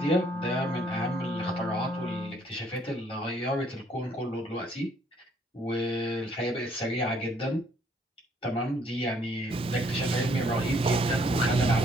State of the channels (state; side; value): normal; both; correlation 0.65